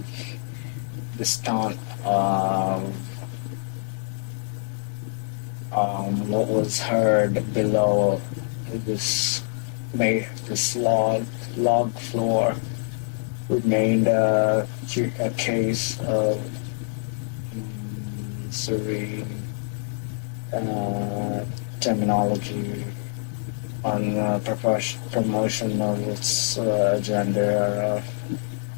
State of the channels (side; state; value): right; silent; digital silence